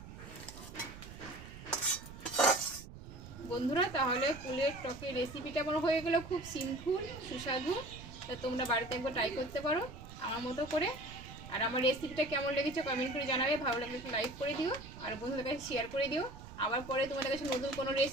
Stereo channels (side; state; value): right; noise; rumble, 14 dB below the sound